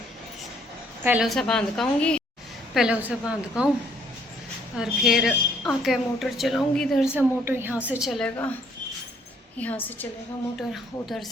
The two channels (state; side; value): normal; both; correlation 0.65